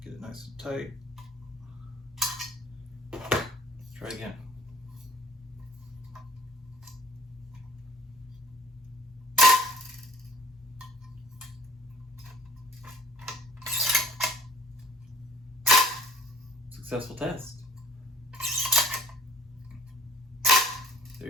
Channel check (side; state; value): both; normal; correlation 0.54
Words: Get it nice and tight. Let's try again. Successful test.